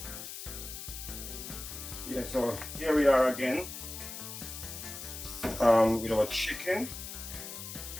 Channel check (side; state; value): left; noise; hiss, 9 dB below the sound